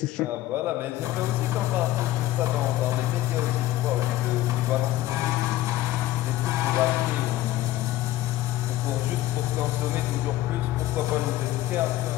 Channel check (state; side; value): quieter; right; 14.9 dB